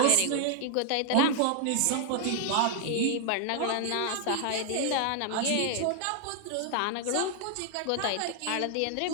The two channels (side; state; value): both; different; correlation 0.00